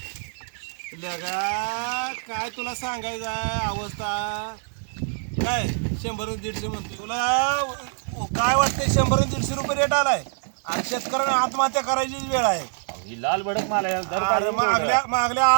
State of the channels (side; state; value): left; silent; 62 dB below the other